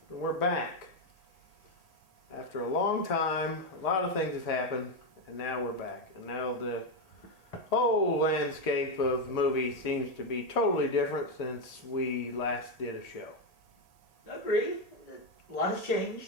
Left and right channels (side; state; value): right; late; 1.8 ms